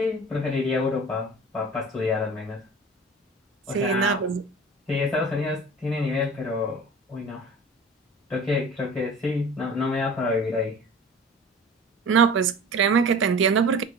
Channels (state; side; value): normal; both; correlation 0.39